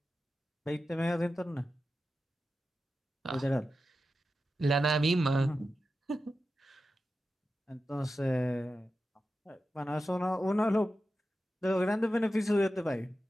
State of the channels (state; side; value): normal; both; correlation 0.92